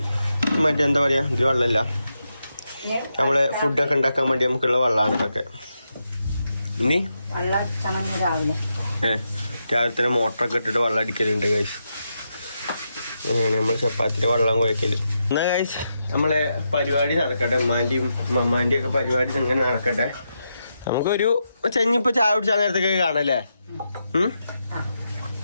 മറ്റെന്താ പറയാ ഇത് വെള്ളമില്ല, നമ്മളെ ഫുഡൊക്കെ ഉണ്ടാക്കാൻ വേണ്ടി നമുക്കുള്ള വെള്ളമാണ് ഇതൊക്കെ. ഇനി രാവിലെ തന്നെ മോട്ടറൊക്കെ ഇട്ടിട്ട് വെള്ളം അടിക്കലുണ്ട് ഗൈസ്. അങ്ങനെയാണ് നമ്മൾ ചപ്പാത്തിൻ്റെ വെള്ളം കുഴക്കല്. എന്നാ ഗൈസ് നമ്മളെ പരിപാടി നടക്കട്ടെ. ഉമ്മാൻ്റെയും മമ്മാൻ്റെയും ഒക്കെ പരിപാടി അങ്ങനെ നടക്കട്ടെ. നമുക്കൊരു ചെഞ്ഞിപ്പോ ചായ കുടിച്ചാൽ നേരത്തൊക്കെ കാണല്ലേ?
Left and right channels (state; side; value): inverted; both; correlation -0.85